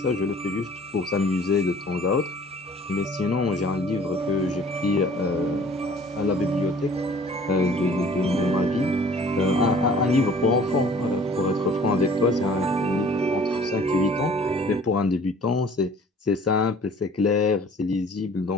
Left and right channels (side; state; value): both; normal; correlation 0.51